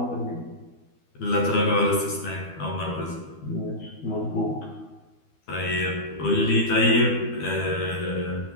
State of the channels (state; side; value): late; right; 12 ms